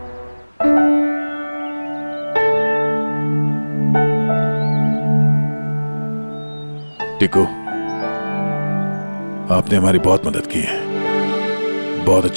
टिकू, आपने हमारी बहुत मदद की है। बहुत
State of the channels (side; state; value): both; inverted; correlation -1.00